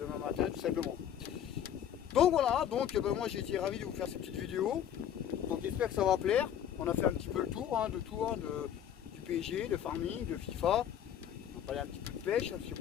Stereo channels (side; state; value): right; quieter; 9.8 dB